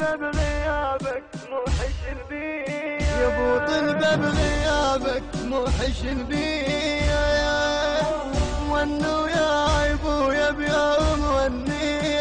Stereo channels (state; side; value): identical; both; correlation 1.00